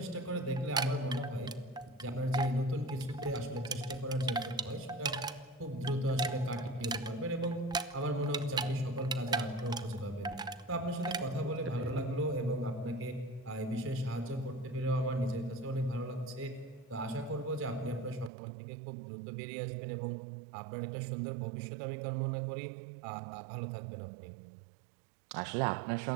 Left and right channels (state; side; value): drops out; left; at 18.3 s